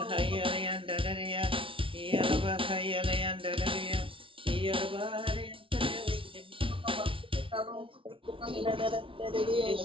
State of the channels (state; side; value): late; left; 0.25 ms